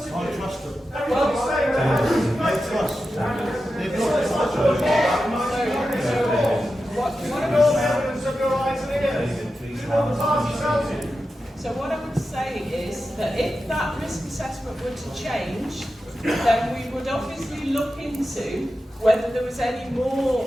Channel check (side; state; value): both; normal; correlation 0.91